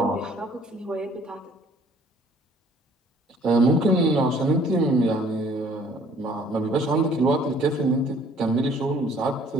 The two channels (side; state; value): both; normal; correlation 0.57